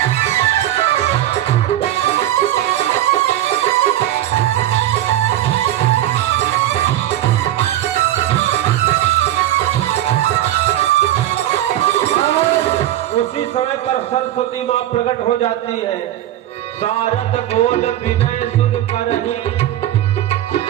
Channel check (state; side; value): quieter; left; 13.1 dB